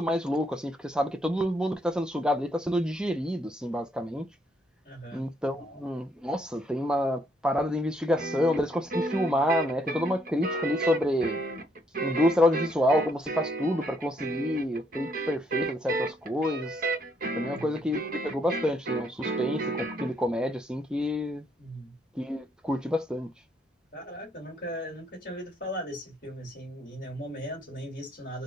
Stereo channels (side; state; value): both; normal; correlation 0.71